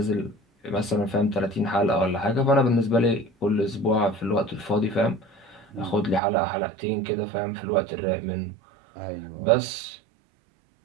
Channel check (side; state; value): left; drops out; at 6.2 s